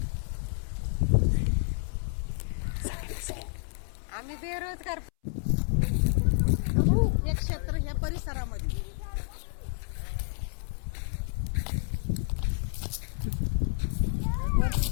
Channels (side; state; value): right; silent; 58 dB below the other